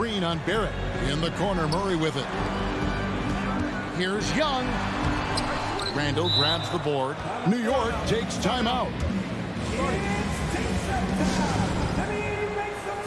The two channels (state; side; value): identical; both; correlation 1.00